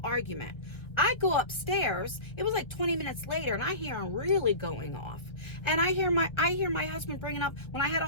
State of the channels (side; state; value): right; late; 1.3 ms